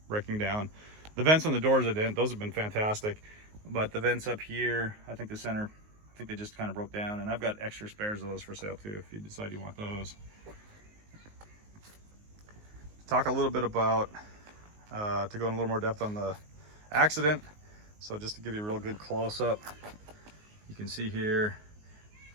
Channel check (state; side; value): late; left; 19 ms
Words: breaking down. The vents on the doors, those have been fantastic. But the vents up here, I think the center, I think they just kind of broke down. And I've got extra spares of those for sale too, if you decide you want those. Talk a little bit about, to go in a little more depth on the accident. So just to give you a real good close-up, you can see here,